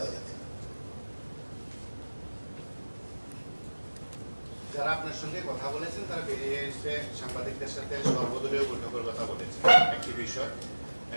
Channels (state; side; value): inverted; both; correlation -1.00